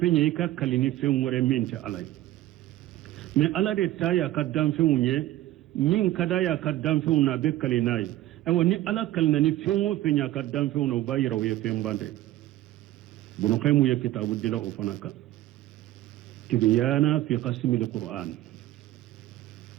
ye i ka kalini fɛn wɛrɛ min tɛ ala ye mɛ ala de ta y'a ka danfɛnw ye min ka d'a y'a ka danfɛnw na a bɛ kali n'a ye ayiwa ni ala kalina ni fɛn o fɛn y'a ka danfɛnw na o b'a yira o ye fɛn ban dɛ bunukaimu ye kitabu dila o fana kan tibyana fi qasimil qur'an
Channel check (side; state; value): left; quieter; 14.9 dB